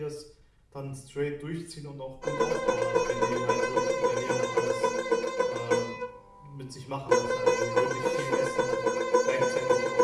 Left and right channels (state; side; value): identical; both; correlation 1.00